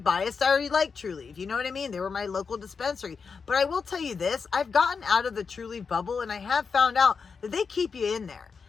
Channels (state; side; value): quieter; right; 5.4 dB